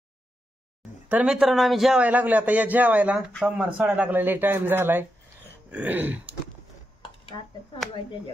तर मित्रांनो आम्ही जेवायला लागलो आता. या जेवायला सोमवार सोडायला लागलेला टाइम झालाय.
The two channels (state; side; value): normal; both; correlation 0.86